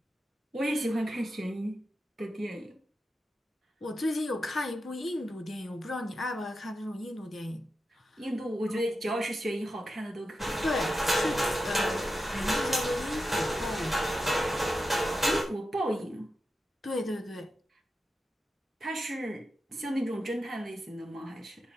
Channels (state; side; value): normal; both; correlation 0.90